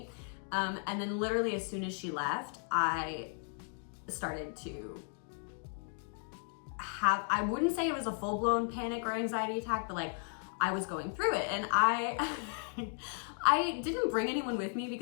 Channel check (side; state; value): right; silent; 54 dB below the other